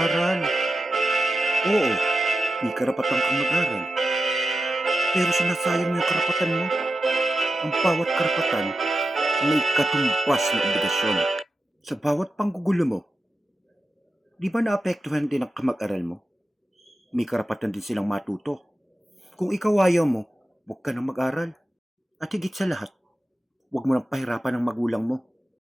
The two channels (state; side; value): normal; both; correlation 0.90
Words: Oo, may karapatan kang mag-aral, pero sinasayang mo yung karapatan mo. Ang bawat karapatan may katumbas na obligasyon. Sa bawat panggugulo mo, di ba naapektuhan din ang kamag-aral mo? May karapatan din silang matuto. Kung ikaw ayaw mo, huwag ka nang mag-aral. At higit sa lahat, huwag mo nang pahirapan ang magulang mo.